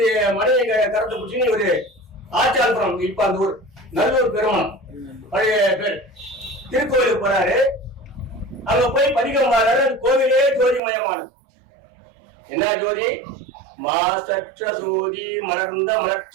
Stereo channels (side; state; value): left; drops out; at 10.8 s